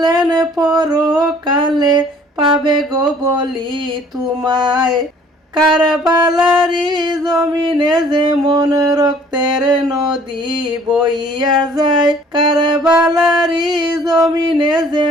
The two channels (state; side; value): normal; both; correlation 0.56